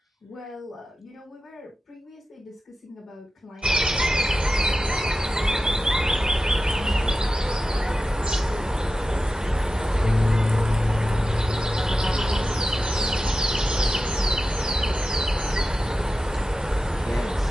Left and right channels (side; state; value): both; normal; correlation 0.92